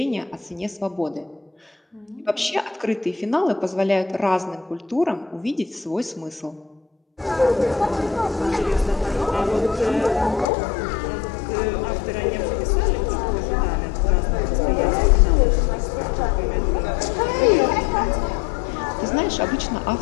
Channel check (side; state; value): right; drops out; at 10.5 s